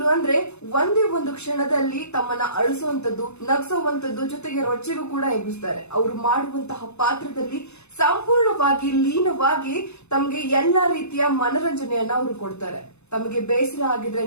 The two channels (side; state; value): right; late; 0.81 ms